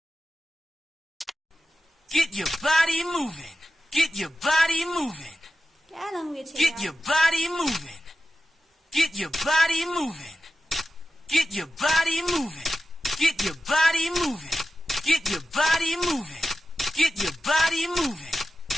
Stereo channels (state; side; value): normal; both; correlation 0.92